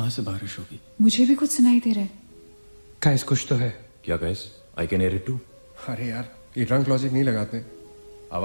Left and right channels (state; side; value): inverted; both; correlation -1.00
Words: से बारिश होगी? मुझे भी कुछ सुनाई दे रहा है। गाइस, कुछ तो है। क्या guys? I can hear it too. अरे यार, ये ड्रंक लॉजिक नहीं लगाते।